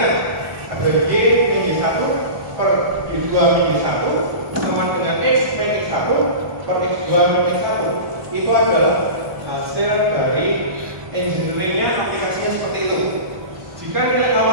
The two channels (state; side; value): late; left; 1.2 ms